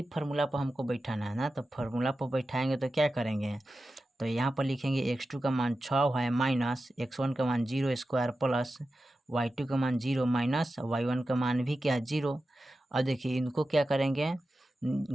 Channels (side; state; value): both; normal; correlation 0.92